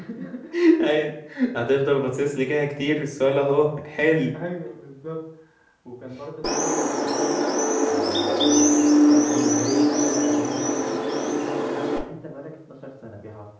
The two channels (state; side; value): identical; both; correlation 1.00